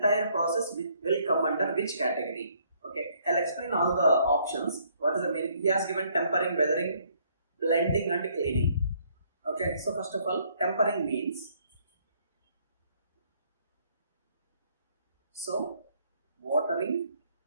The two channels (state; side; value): inverted; both; correlation -0.66